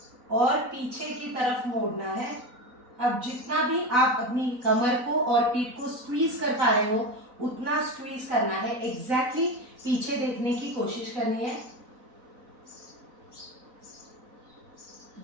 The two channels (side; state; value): left; late; 4.0 ms